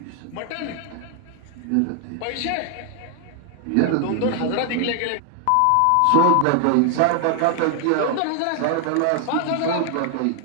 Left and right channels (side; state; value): both; different; correlation 0.00